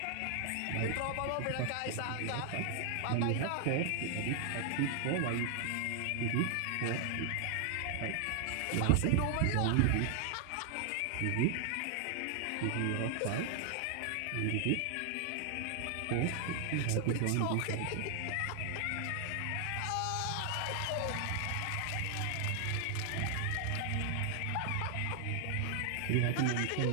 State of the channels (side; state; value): both; different; correlation 0.00